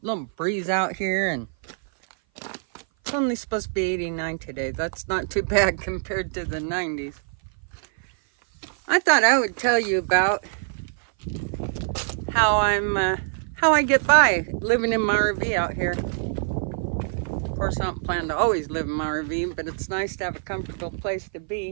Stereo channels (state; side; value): silent; left; 57 dB below the other